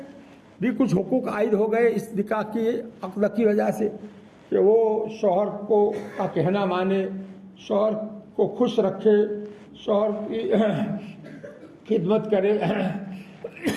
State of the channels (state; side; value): identical; both; correlation 1.00